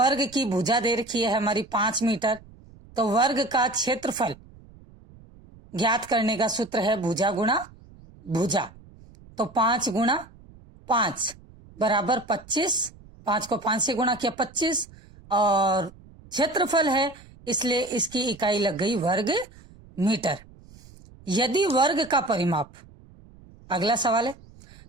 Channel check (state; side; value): noise; right; rumble, 23 dB below the sound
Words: की भुजा दे रखी है हमारी 5 मीटर, तो वर्ग का क्षेत्रफल ज्ञात करने का सूत्र है भुजा गुणा भुजा। तो 5 गुणा 5 बराबर 25, 5 को 5 से गुणा किया 25, और क्षेत्रफल है इसलिए इसकी इकाई लग गई वर्ग मीटर। यदि वर्ग का परिमाप, अगला सवाल है,